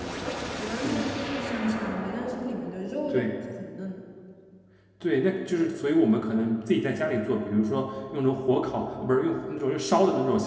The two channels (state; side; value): identical; both; correlation 1.00